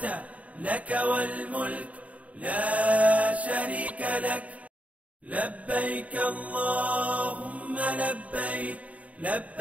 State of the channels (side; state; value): left; late; 0.068 ms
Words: لك والملك لا شريك لك. لبيك اللهم لبيك،